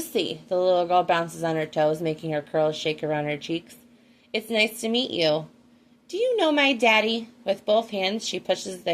The little girl bounces on her toes, making her curls shake around her cheeks. It's nice to meet you. Do you know my daddy? With both hands, she pushes the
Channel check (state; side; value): identical; both; correlation 1.00